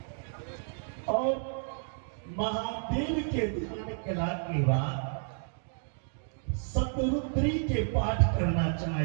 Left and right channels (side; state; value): left; silent; 57 dB below the other